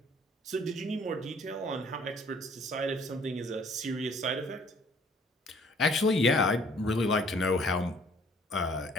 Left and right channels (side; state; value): both; normal; correlation 0.59